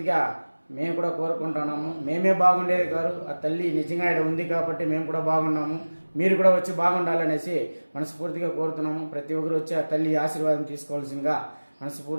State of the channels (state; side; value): inverted; both; correlation -1.00